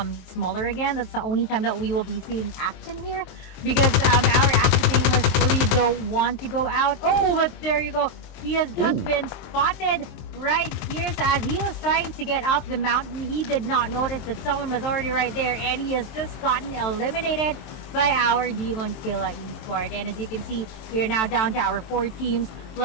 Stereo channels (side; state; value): right; late; 23 ms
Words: smaller again, that's the only time that we will be seeing action here because our active Nameless really don't want to go out. Oh, but there you go. He has just been spotted right here. So as he was trying to get up the mountain, he did not notice that someone was already right there and he has just gotten eliminated by our Demon Killa Esport. And as you can see, we are now down to our 4 teams.